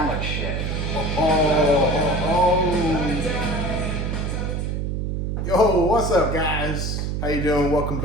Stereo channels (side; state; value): right; noise; hum, 1 dB below the sound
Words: like shit. Yo, what's up, guys? How you doing? Welcome